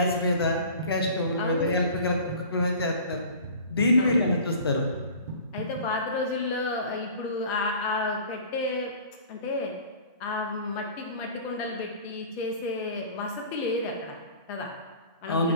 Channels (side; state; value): both; inverted; correlation -0.44